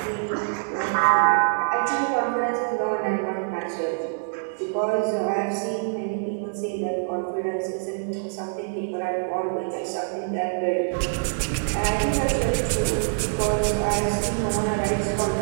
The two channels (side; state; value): left; silent; 62 dB below the other